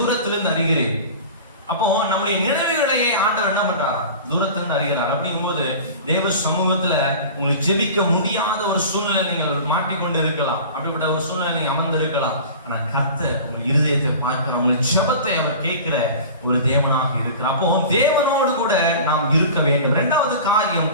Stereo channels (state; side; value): inverted; both; correlation -0.37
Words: அறிகிறீர். அப்போ நம்முடைய நினைவுகளையே ஆண்டவர் என்ன பண்றார்? தூரத்திலிருந்து அறிகிறார். அப்படிங்கும்போது தேவ சமூகத்துல உங்களுக்கு ஜெபிக்க முடியாத ஒரு சூழ்நிலை நீங்கள் மாட்டிக்கொண்டு இருக்கலாம், அப்படிப்பட்ட ஒரு சூழ்நிலை நீங்க அமர்ந்து இருக்கலாம். ஆனா கர்த்தர் உங்கள் இருதயத்தை பார்க்கிற, உங்கள் ஜெபத்தை அவர் கேட்கிற ஒரு தேவனாக இருக்கிறார். அப்போ தேவனோடு கூட நாம் இருக்க வேண்டும். 2வது காரியம்